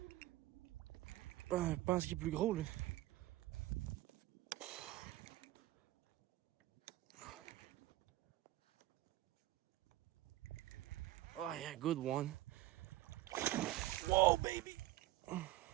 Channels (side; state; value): left; quieter; 16.4 dB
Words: Je pense qu'il est plus gros, là. Oh yeah, good one. Whoa, baby!